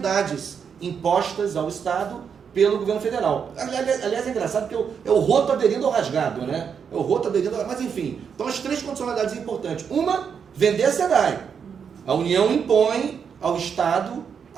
impostas ao Estado pelo governo federal. Aliás, é engraçado porque é o roto aderindo ao rasgado, né? É o roto aderindo ao... Mas enfim, então as três condicionalidades importantes. Uma, vender a SEDAI. A União impõe ao Estado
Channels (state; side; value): quieter; left; 6.9 dB